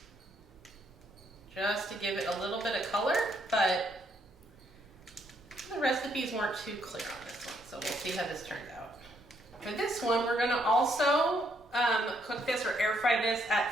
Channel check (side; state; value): both; normal; correlation 0.72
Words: just to give it a little bit of color, but the recipes weren't too clear on this one, so we'll see how this turns out. For this one, we're going to also cook this or air fry this